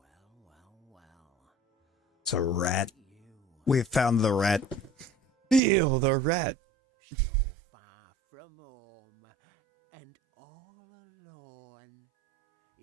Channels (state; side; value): drops out; left; at 5.6 s